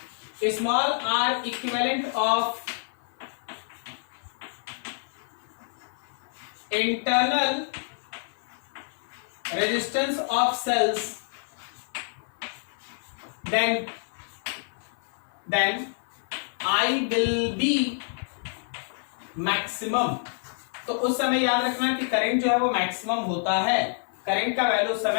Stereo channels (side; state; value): right; silent; 55 dB below the other